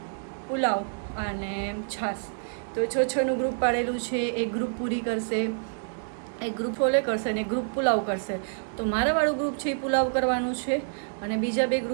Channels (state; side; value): silent; left; digital silence